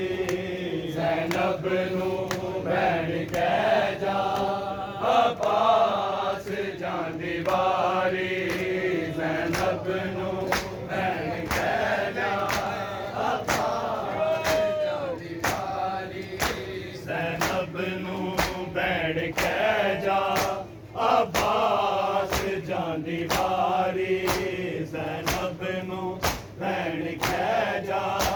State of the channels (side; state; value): both; identical; correlation 1.00